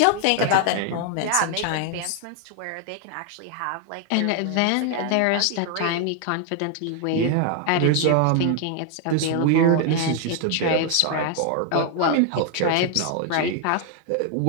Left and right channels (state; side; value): different; both; correlation 0.00